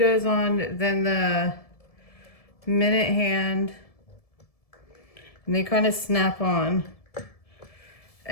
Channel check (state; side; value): late; right; 1.7 ms